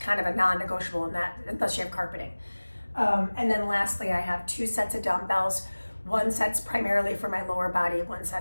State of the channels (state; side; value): inverted; both; correlation -1.00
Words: of a non-negotiable in that, unless you have carpeting. And then lastly, I have 2 sets of dumbbells. One set's primarily for my lower body, one